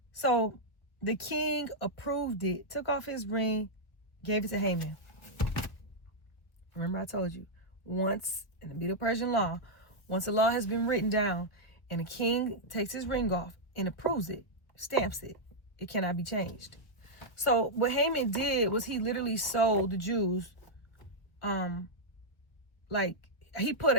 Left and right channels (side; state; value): right; late; 1.1 ms